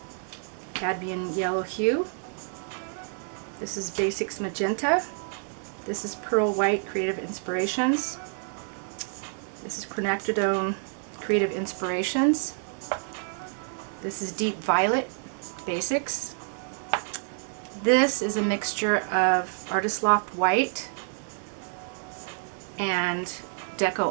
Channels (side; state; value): left; silent; 57 dB below the other